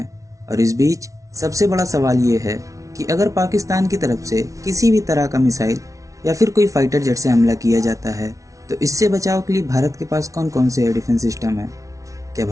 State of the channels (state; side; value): late; left; 0.16 ms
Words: और इस बीच सबसे बड़ा सवाल ये है कि अगर पाकिस्तान की तरफ से किसी भी तरह का मिसाइल या फिर कोई फाइटर जेट से हमला किया जाता है तो इससे बचाव के लिए भारत के पास कौन कौन से एयर डिफेंस सिस्टम है। क्या